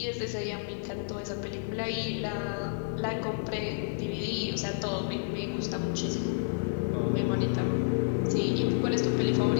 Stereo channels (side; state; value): right; silent; digital silence